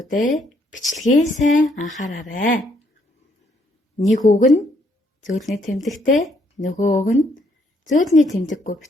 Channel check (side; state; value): both; normal; correlation 0.70